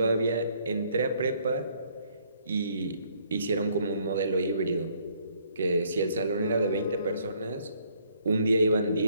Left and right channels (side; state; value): both; inverted; correlation -0.66